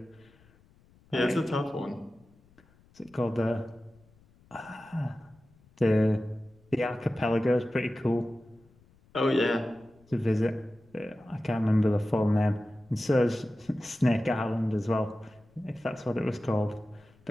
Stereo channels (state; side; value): noise; left; rumble, 30 dB below the sound